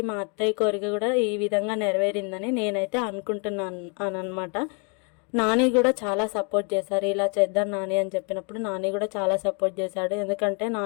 మా అత్తయ్య కోరిక కూడా ఈ విధంగా నెరవేరిందని నేనైతే అనుకుంటున్నాను అనమాట. నాని కూడా చాలా సపోర్ట్ చేశారు. ఇలా చేద్దాం నాని అని చెప్పినప్పుడు నాని కూడా చాలా సపోర్ట్ చేశాడు. ఎందుకంటే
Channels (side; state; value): right; quieter; 37.0 dB